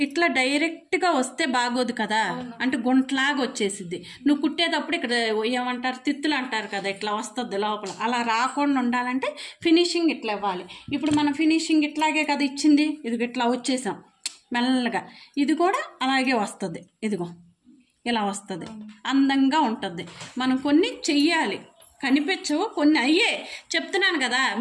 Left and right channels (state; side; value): identical; both; correlation 1.00